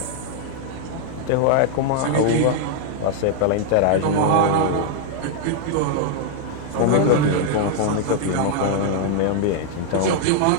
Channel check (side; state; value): both; different; correlation 0.00